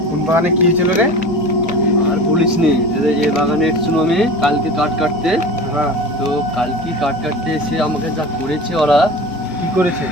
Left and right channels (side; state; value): both; normal; correlation 0.34